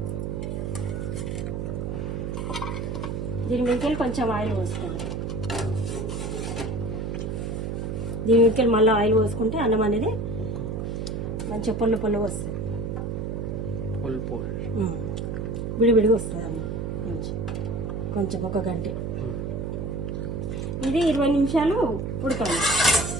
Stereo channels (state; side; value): noise; right; hum, 3 dB below the sound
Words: దీని మీదకి కొంచెం ఆయిల్ పోసుకోవాలి. దీని మీదకి మళ్ళీ ఆయిల్ పోసుకుంటే అన్నం అనేది మంచిగా పొల్ల వస్తుంది, విడివిడిగా వస్తుంది అన్నం మంచి. కొంచెం ఒక గంట ఇది 20 నిమిషాలు ఉడకాలి